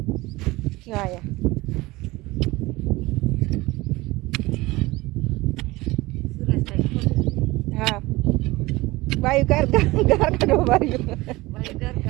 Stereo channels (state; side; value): quieter; left; 20.6 dB